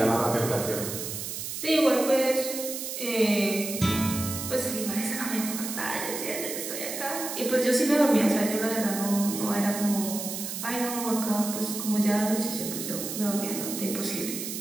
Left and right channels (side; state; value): right; noise; hiss, 6 dB below the sound